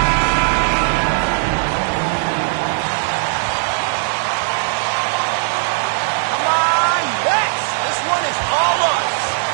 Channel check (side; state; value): left; silent; digital silence